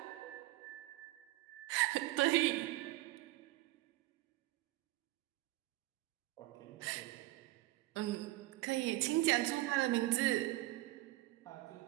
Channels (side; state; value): left; quieter; 18.0 dB